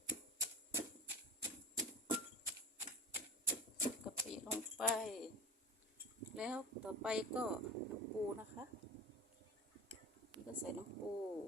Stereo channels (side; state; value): both; normal; correlation 0.34